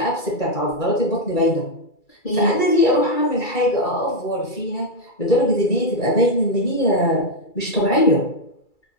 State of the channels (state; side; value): late; right; 2.3 ms